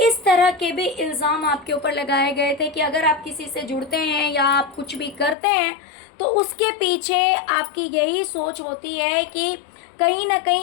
इस तरह के भी इल्ज़ाम आपके ऊपर लगाए गए थे कि अगर आप किसी से जुड़ते हैं या आप कुछ भी करते हैं तो उसके पीछे आपकी यही सोच होती है कि कहीं ना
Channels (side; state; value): right; drops out; at 5.4 s